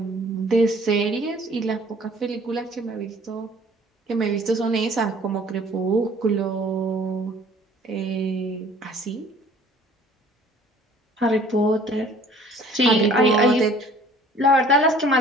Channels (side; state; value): both; normal; correlation 0.53